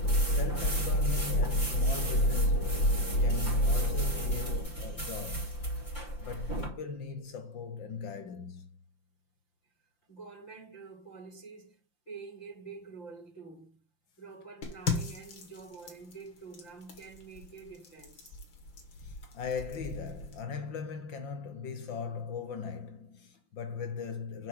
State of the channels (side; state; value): right; late; 5.8 ms